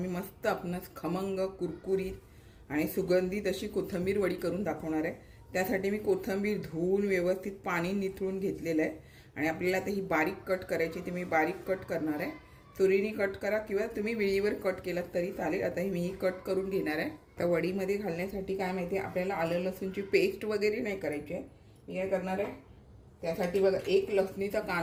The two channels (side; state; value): both; identical; correlation 1.00